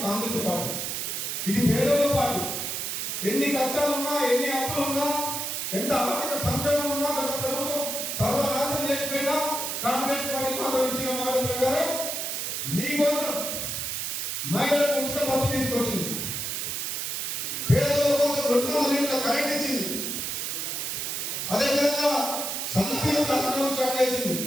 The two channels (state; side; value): noise; right; hiss, 2 dB below the sound